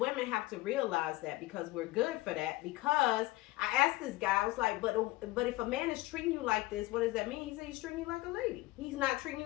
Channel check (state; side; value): quieter; right; 19.5 dB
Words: have to realize that, because we're good for that. Because I asked this guy, I was like, but if a man is treating you like this, what does that mean? He said he's treating you like a lady. He's not treating